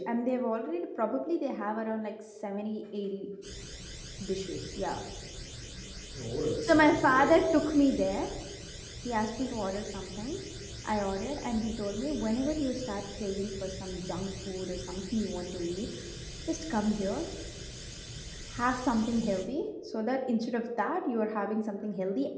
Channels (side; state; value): both; identical; correlation 1.00